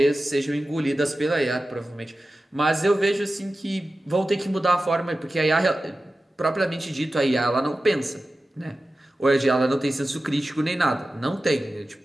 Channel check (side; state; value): both; normal; correlation 0.94